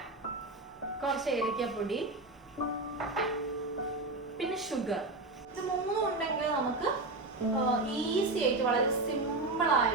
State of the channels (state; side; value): quieter; left; 3.1 dB